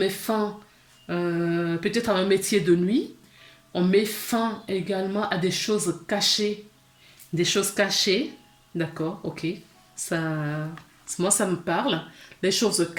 fin peut-être à un métier de nuit. On met fin également à des choses cachées. Des choses cachées. D'accord, ok. Moi, ça me parle. Les choses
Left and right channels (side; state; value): both; identical; correlation 1.00